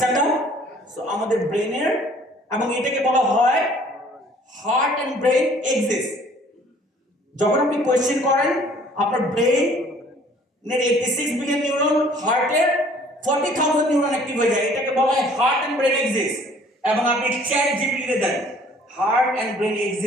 সো আমাদের ব্রেনের, এবং এটাকে বলা হয় হার্ট এন্ড ব্রেন এক্সিস্ট। যখন আপনি কোয়েশ্চেন করেন আপনার ব্রেনের 86 বিলিয়ন নিউরন, হার্টের 40,000 নিউরন অ্যাক্টিভ হয়ে যায়। এটাকে বলা হয় হার্ট এন্ড ব্রেন এক্সিস্ট। এবং আপনি চ্যাট জিপিটিতে দেন হার্ট এন্ড ব্রেন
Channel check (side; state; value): both; normal; correlation 0.56